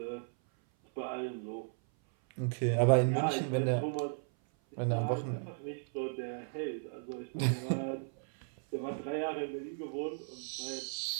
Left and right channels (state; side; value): silent; left; 54 dB below the other